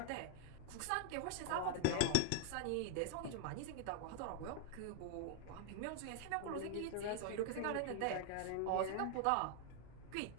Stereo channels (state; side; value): different; both; correlation 0.00